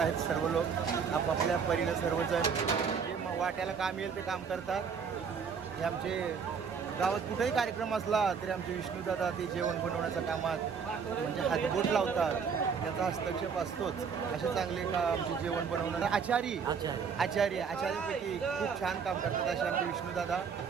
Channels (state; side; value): quieter; left; 6.2 dB